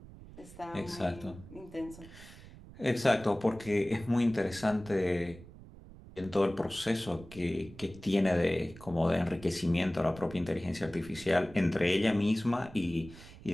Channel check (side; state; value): right; noise; rumble, 18 dB below the sound